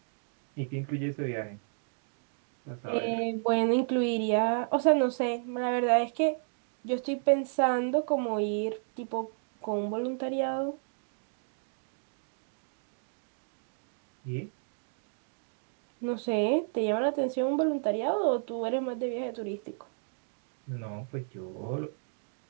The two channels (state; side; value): silent; left; digital silence